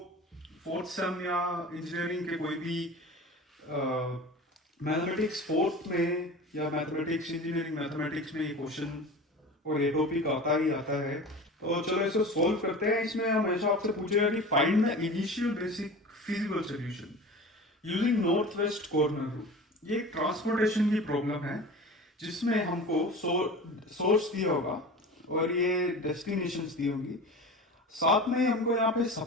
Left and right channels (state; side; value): normal; both; correlation 0.35